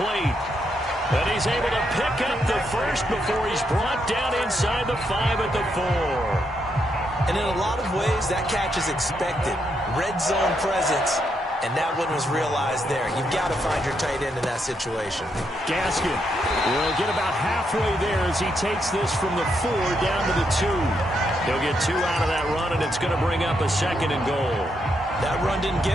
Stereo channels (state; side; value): normal; both; correlation 0.79